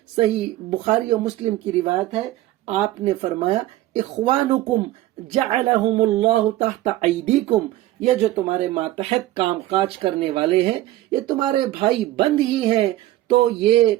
صحیح بخاری و مسلم کی روایت ہے، آپ نے فرمایا اخوانکم جعلہم اللہ تحت ایدیکم، یہ جو تمہارے ماتحت کام کاج کرنے والے ہیں یہ تمہارے بھائی بند ہی ہیں، تو یہ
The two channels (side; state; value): left; quieter; 15.5 dB